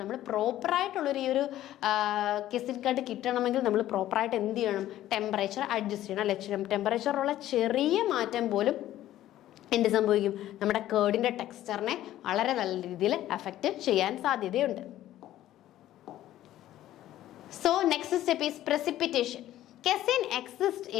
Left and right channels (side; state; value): right; quieter; 13.5 dB